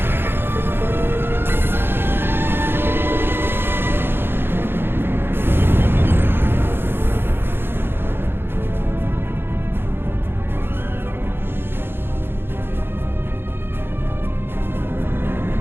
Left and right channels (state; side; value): late; left; 0.10 ms